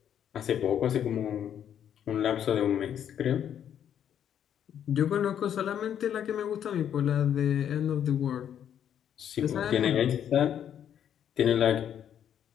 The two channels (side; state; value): right; quieter; 9.4 dB